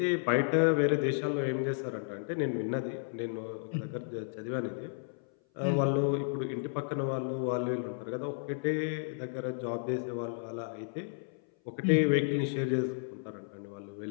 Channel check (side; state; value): right; silent; 56 dB below the other